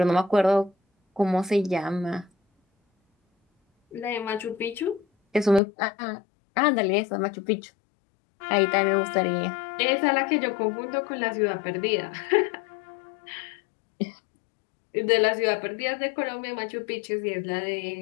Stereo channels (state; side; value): drops out; right; at 5.6 s